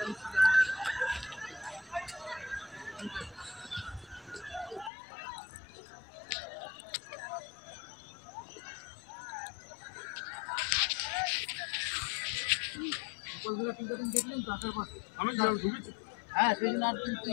হ্যাঁ সেই জন্য আর কিন্তু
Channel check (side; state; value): right; drops out; at 4.9 s